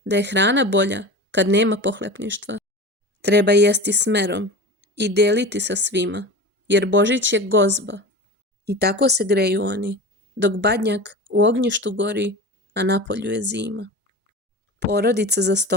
da je hrana bolja kad nema pohlepništva. Treba jesti smerom i deliti sa svima, jer Božić je gozba. I tako se greju oni, dok Badnjak u ognjištu gori, a napolju je zima. Porodica za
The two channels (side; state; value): both; normal; correlation 0.32